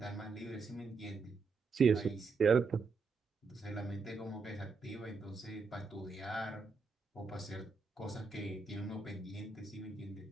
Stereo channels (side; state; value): left; quieter; 4.6 dB